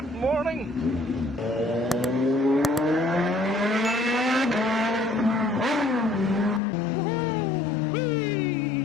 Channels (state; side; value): drops out; right; at 6.6 s